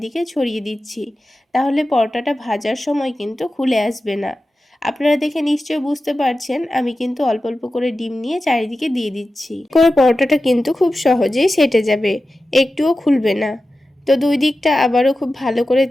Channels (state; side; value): normal; both; correlation 0.93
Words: ছড়িয়ে দিচ্ছি। তাহলে পরোটাটা ভাজার সময় কিন্তু খুলে আসবে না। আপনারা দেখে নিশ্চয়ই বুঝতে পারছেন আমি কিন্তু অল্প অল্প করে ডিম নিয়ে চারিদিকে দিয়ে দিচ্ছি। করে পরোটাটা কিন্তু খুব সহজেই সেটে যাবে, একটুও খুলবে না। তো দুই দিকটা আবারও খুব ভালো করে